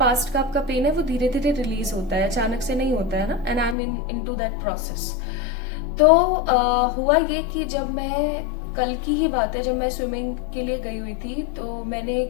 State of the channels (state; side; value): drops out; right; at 3.8 s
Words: का आपका पेन है वो धीरे धीरे रिलीज होता है, अचानक से नहीं होता है ना। And I am into that process. तो हुआ ये कि जब मैं कल की ही बात है, जब मैं स्विमिंग के लिए गई हुई थी तो मैंने